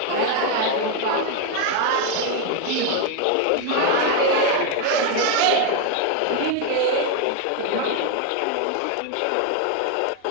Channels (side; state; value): both; different; correlation 0.01